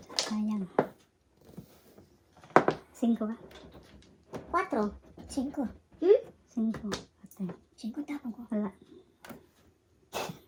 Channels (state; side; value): identical; both; correlation 1.00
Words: Sayang. 5 ba? 4. 5. 5. Ate. 5 tapon ko. Wala.